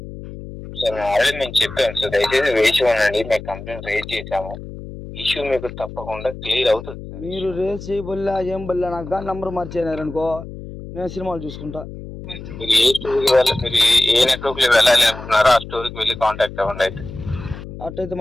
సార్ ఆల్రెడీ నేను చెప్పాను సార్, దయచేసి వేసి ఉండండి. మేము కంప్లైంట్ రేజ్ చేసాము, ఇష్యూ మీకు తప్పకుండా క్లియర్ అవుతుంది. మీరు రేజ్ చేయబల్లా ఏం బల్లా, నాకు కానీ నంబర్ మార్చేనారనుకో నేను సినిమాలు చూసుకుంటా. మీరు ఏ స్టోర్కి మీరు ఏ నెట్వర్క్ లో వెళ్ళాలి అనుకున్నారో ఆ స్టోర్కి వెళ్ళి కాంటాక్ట్ అవ్వండి. అయితే అట్టయితే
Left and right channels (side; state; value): left; noise; hum, 12 dB below the sound